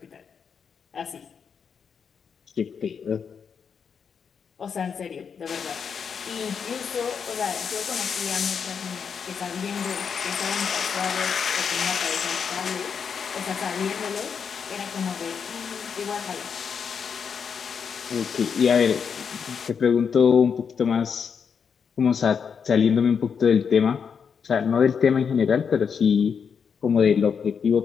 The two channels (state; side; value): quieter; right; 6.6 dB